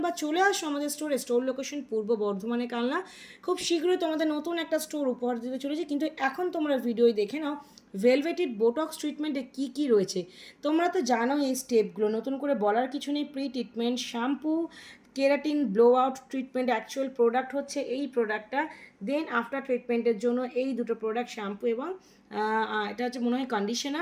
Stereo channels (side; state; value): both; identical; correlation 1.00